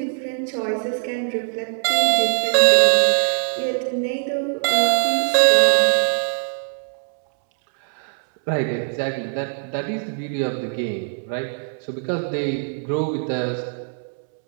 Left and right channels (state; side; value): silent; left; 65 dB below the other